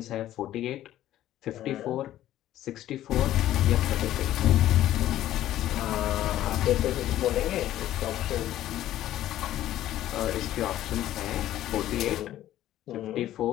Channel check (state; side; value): quieter; right; 13.2 dB